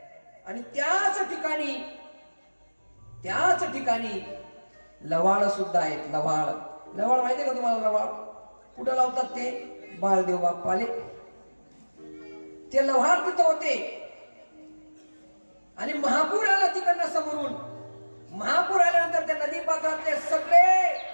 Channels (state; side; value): inverted; both; correlation -1.00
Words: आणि त्याच ठिकाणी लवाळ सुद्धा आहेत. लवाळ माहितीये का तुम्हाला? लवाळ कुठं लावतात ते? बाळदेव बाप्पाले ते लव्हाळ तिथं होते. आणि महापूर आला तिकडनं समोरून. महापूर आल्यानंतर त्या नदी पात्रातले सगळे